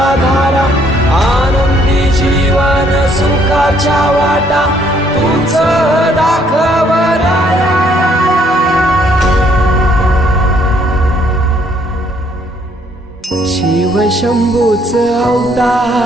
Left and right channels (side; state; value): both; normal; correlation 0.66